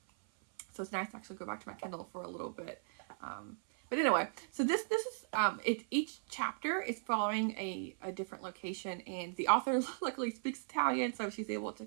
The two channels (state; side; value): silent; left; 53 dB below the other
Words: so it's nice to actually go back to my Kindle for a little bit. But anyway, so this is each chapter is following a different location, and the author luckily speaks Italian, so she's able to